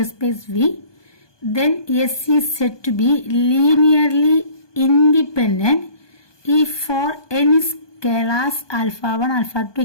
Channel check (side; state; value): right; late; 1.2 ms